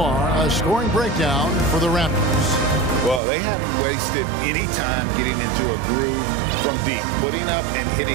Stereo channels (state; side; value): drops out; left; at 3.2 s